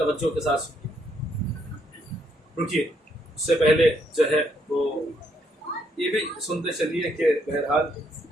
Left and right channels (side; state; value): both; normal; correlation 0.73